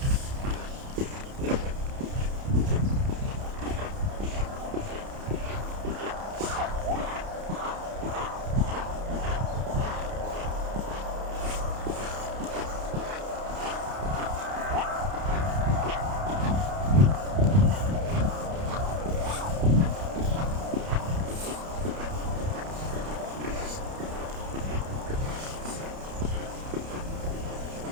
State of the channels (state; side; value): late; left; 30 ms